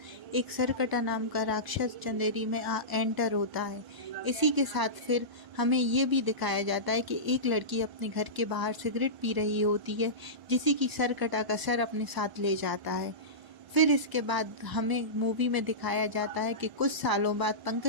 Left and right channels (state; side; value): late; left; 1.0 ms